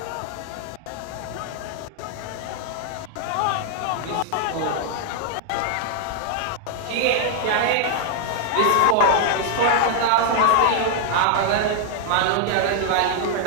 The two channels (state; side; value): different; both; correlation 0.00